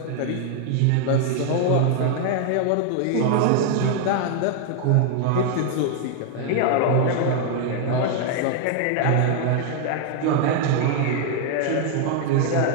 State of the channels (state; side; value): different; both; correlation 0.00